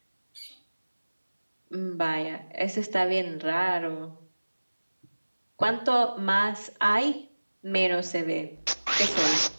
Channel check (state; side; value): inverted; both; correlation -1.00